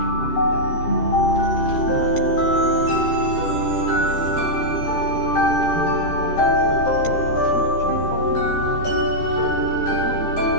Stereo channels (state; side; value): late; right; 13 ms